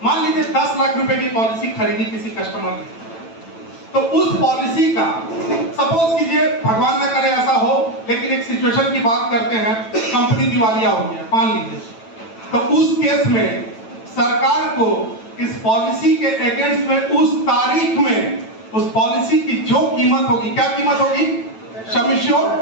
मान लीजिए 10 लाख रुपए की पॉलिसी खरीदी किसी कस्टमर ने, तो उस पॉलिसी का सपोज कीजिए, भगवान न करे ऐसा हो, लेकिन एक सिचुएशन की बात करते हैं, कंपनी दिवालिया हो गया मान लीजिए, तो उस केस में सरकार को इस पॉलिसी के अगेंस्ट में उस तारीख में उस पॉलिसी की जो कीमत होगी, क्या कीमत होगी? सम एश्योर्ड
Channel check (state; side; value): late; right; 9.0 ms